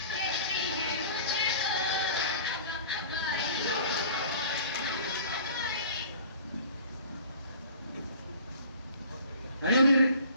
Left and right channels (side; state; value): both; inverted; correlation -0.46